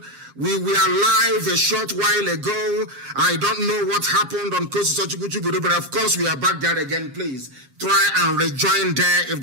We were live a short while ago. I don't know what happened on Kosi, but of course we are back there again. Please try and rejoin there if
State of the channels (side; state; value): left; late; 7.4 ms